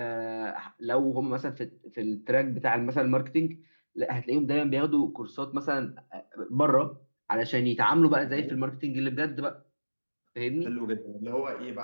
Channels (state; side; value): inverted; both; correlation -1.00